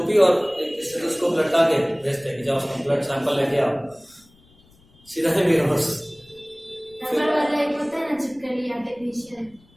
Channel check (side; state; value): left; noise; rumble, 30 dB below the sound